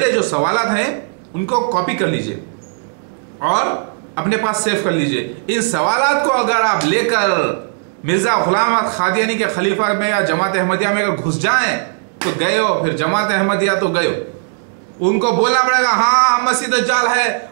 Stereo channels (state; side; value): silent; left; digital silence